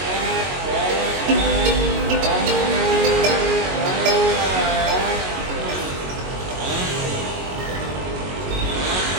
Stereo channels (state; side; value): late; left; 22 ms